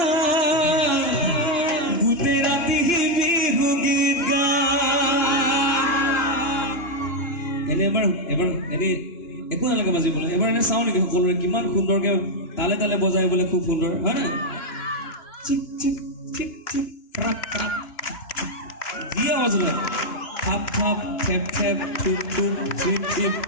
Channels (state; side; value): late; right; 2.9 ms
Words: গোটেই ৰাতি বিহু গীত গায় এনে এবাৰ এনে একো নালাগে বাজিবলৈ এবাৰ এনে চাওঁ নেকি সকলোৰে কিমান সুন্দৰকে তালে তালে বজাই বোলে খুব সুন্দৰ হয় না চিক চিক চিক চিক ক্ৰাক ক্ৰাক যি আৱাজ ওলায় থাপ থাপ থেপ থেপ থুপ থুপ চিপ চিপ